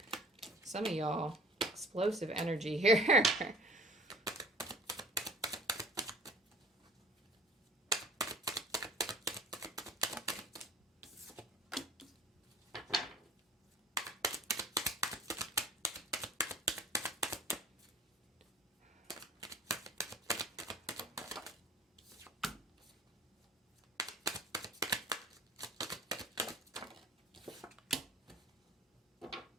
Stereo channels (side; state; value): both; normal; correlation 0.47